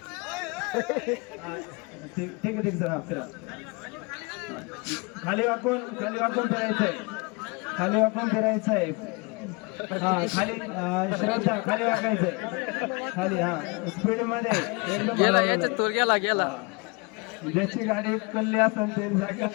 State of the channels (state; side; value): quieter; right; 29.2 dB